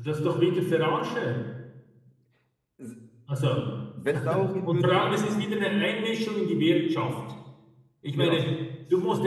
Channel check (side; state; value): both; identical; correlation 1.00